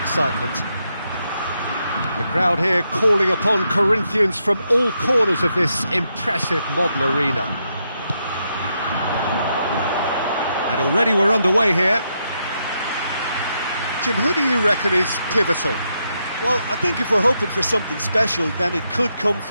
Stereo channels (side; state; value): both; inverted; correlation -0.81